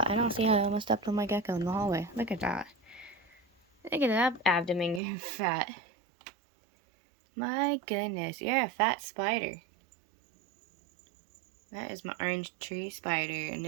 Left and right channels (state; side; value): drops out; left; at 5.0 s